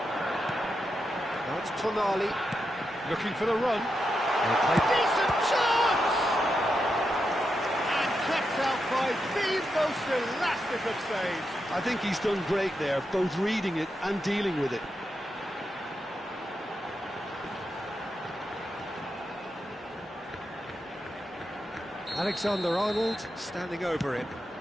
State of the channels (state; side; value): normal; both; correlation 0.86